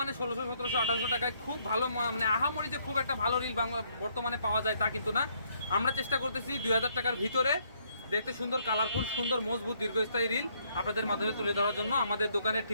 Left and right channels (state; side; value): inverted; both; correlation -0.70